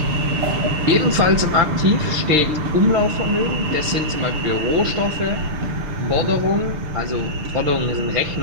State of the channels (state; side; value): late; left; 6.6 ms